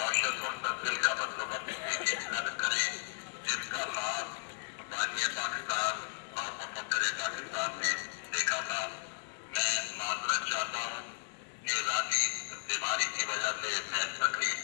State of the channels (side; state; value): right; silent; digital silence